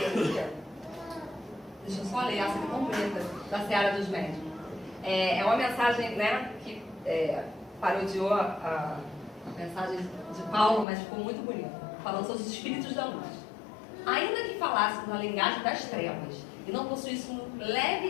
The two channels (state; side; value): drops out; right; at 10.9 s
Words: aqui, deixa eu só ler essa aqui completa, da Seara dos Médicos. É uma mensagem, né, que parodiou a mensagem de Paulo, mas ficou muito bonita, falando sobre os espíritos da luz. Ainda que falássemos a linguagem das trevas e não possuíssemos um